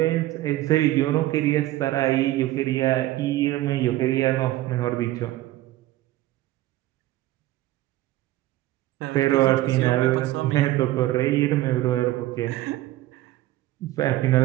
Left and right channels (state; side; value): quieter; left; 15.9 dB